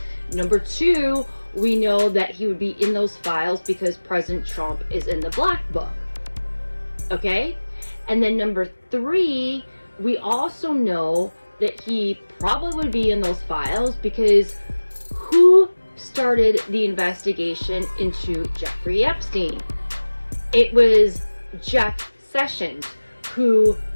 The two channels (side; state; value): both; inverted; correlation -1.00